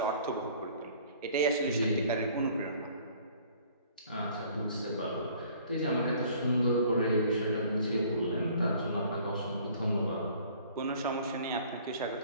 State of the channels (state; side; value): inverted; both; correlation -0.54